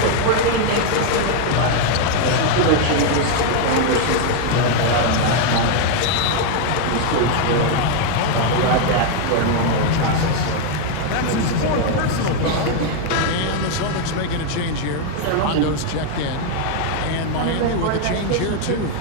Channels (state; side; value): different; both; correlation 0.00